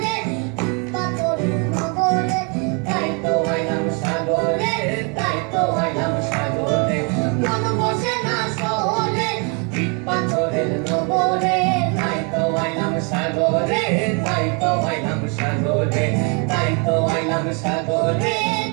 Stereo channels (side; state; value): left; quieter; 35.0 dB